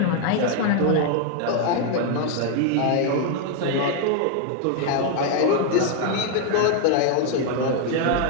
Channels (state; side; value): different; both; correlation 0.00